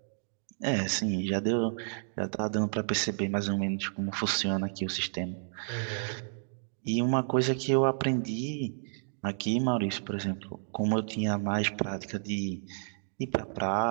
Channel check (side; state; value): left; silent; digital silence